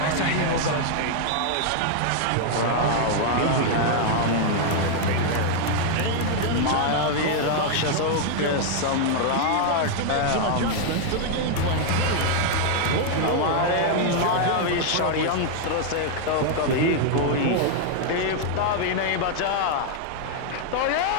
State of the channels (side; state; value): both; different; correlation 0.00